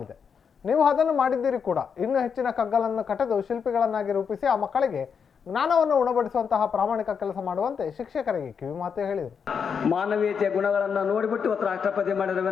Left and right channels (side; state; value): right; quieter; 6.6 dB